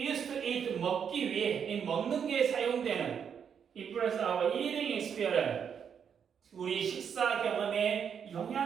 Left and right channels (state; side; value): quieter; left; 7.5 dB